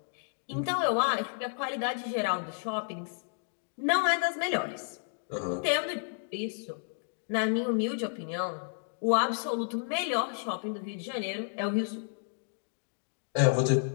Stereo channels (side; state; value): right; silent; digital silence